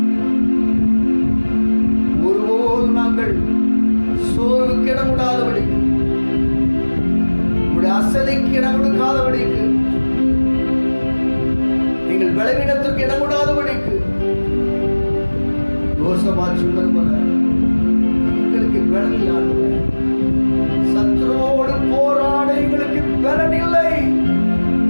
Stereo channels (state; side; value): inverted; both; correlation -1.00